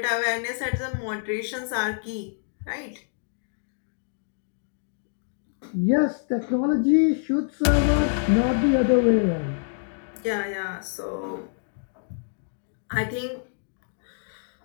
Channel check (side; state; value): right; silent; digital silence